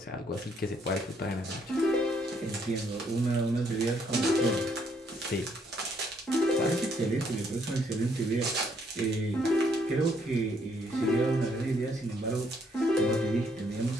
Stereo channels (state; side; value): normal; both; correlation 0.70